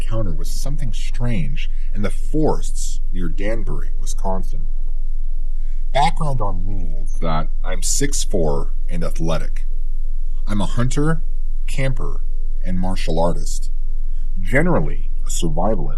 with something strange in the forests near Danbury, Wisconsin. Background on me is that I'm 6'4" and athletic. I'm a hunter, camper, and martial artist. Generally, a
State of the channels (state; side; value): identical; both; correlation 1.00